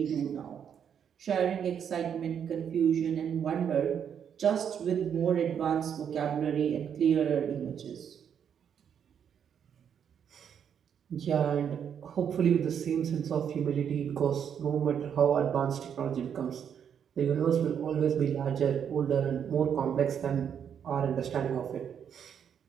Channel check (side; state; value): left; quieter; 8.2 dB